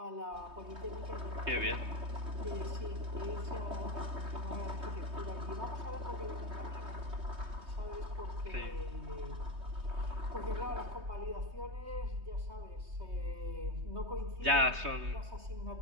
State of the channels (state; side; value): late; left; 3.2 ms